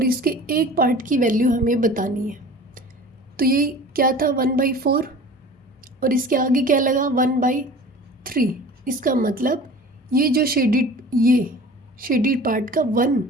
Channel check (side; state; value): both; normal; correlation 0.41